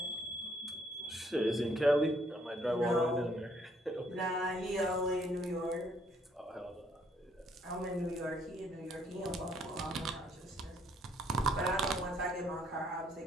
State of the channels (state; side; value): normal; both; correlation 0.67